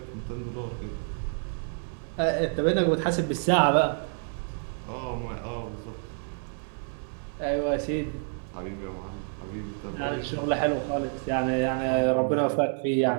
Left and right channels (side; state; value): left; silent; 59 dB below the other